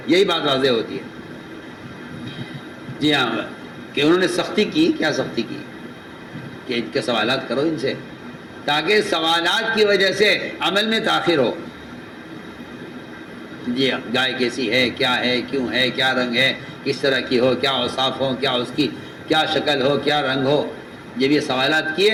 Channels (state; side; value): identical; both; correlation 1.00